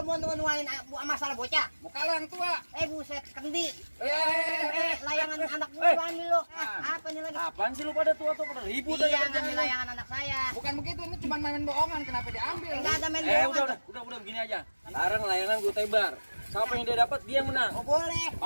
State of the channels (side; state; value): both; inverted; correlation -1.00